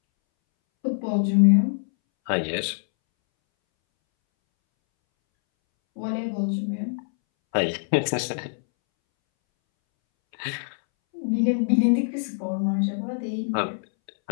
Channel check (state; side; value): silent; right; 62 dB below the other